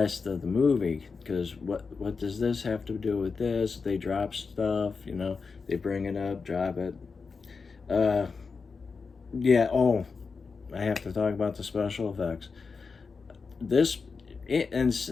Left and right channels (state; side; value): quieter; right; 4.9 dB